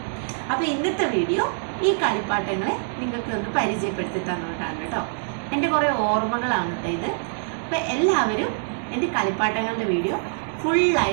അപ്പോൾ ഇന്നത്തെ വീഡിയോ ഈ കളിപ്പാട്ടങ്ങളെ നിങ്ങൾക്ക് ഒന്ന് പരിചയപ്പെടുത്തി തന്നുകൊണ്ടാണ് കേട്ടോ. എൻ്റെ കുറേ ഓർമ്മകളാണ് കേട്ടോ ഇത്. അപ്പോൾ എല്ലാവരും എൻ്റെ കളിപ്പാട്ടങ്ങളുടെ വീഡിയോ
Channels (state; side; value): silent; left; digital silence